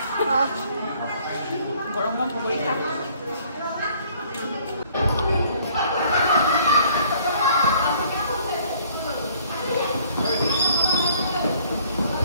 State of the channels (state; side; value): inverted; both; correlation -0.59